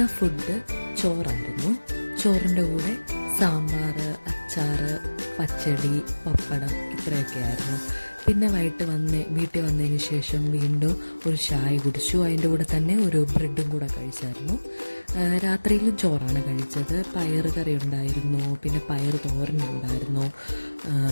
ഫുഡ് ചോറായിരുന്നു. ചോറിൻ്റെ കൂടെ സാമ്പാർ, അച്ചാർ, പച്ചടി, പപ്പടം ഇത്രയൊക്കെ ആയിരുന്നു. പിന്നെ വീട്ടിൽ വന്നതിന് ശേഷം വീണ്ടും ഒരു ചായ കുടിച്ചു. അതിൻ്റെ കൂടെ തന്നെ ഒരു ബ്രെഡും കൂടെ കഴിച്ചായിരുന്നു. രാത്രിയിലും ചോറാണ് കഴിച്ചത്. പയർ കറി ഉണ്ടായിരുന്നു, പിന്നെ പയർ തോരനുണ്ടായിരുന്നു,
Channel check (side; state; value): both; inverted; correlation -1.00